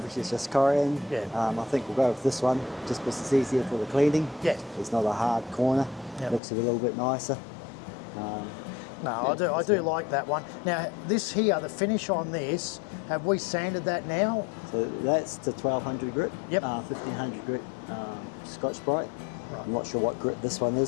it's just Corian. Yeah. I think we'll go with this one just because it's easier for the cleaning. Yeah. It's not a hard corner. Yep. Looks a little bit nicer. No, Yeah, I do like that one. Now, this here, the finish on this, have we sanded that now? So that's the 1200 grit, Yep. 1500 grit Scotch Brite. Right. I'm not sure what grit this one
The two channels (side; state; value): right; drops out; at 6.4 s